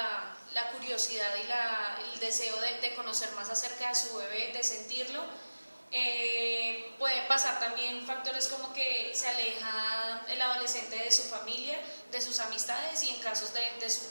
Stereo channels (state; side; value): inverted; both; correlation -1.00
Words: curiosidad y el deseo de conocer más acerca de su bebé, de sentirlo. Pueden pasar también factores como que se aleja el adolescente de su familia, de sus amistades y en casos de su